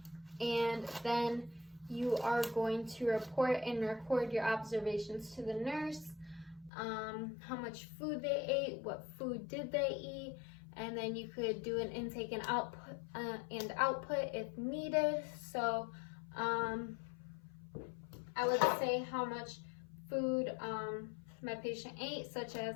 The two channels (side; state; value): right; drops out; at 6.7 s